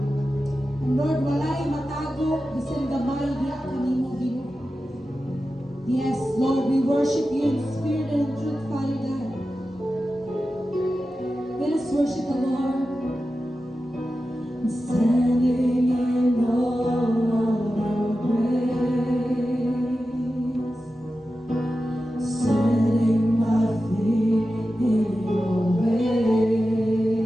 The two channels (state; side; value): normal; both; correlation 0.92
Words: And Lord, walay matago bisan gamay diha kanimo, Ginoo. Yes, Lord, we worship you in spirit and in truth, Father God. Let us worship the Lord. Standing in all your grace, setting my feet in your ways,